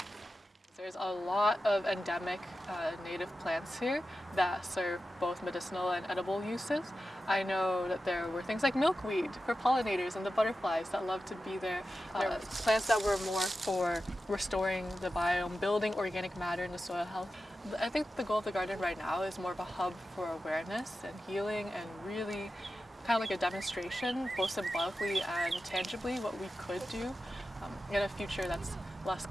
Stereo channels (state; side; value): normal; both; correlation 0.92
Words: There's a lot of endemic native plants here that serve both medicinal and edible uses. I know that there were things like milkweed for pollinators and the butterflies that love to be there. There were plants that were more for restoring the biome, building organic matter into soil health. I think the goal of the garden right now is more of a hub for awareness and healing, and really kind of like a demonstration, both symbolically and tangibly, what we could do in a future that's less